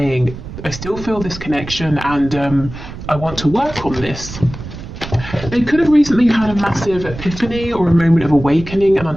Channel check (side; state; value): right; noise; rumble, 12 dB below the sound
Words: I still feel this connection and I want to work on this. They could have recently had a massive epiphany or a moment of awakening and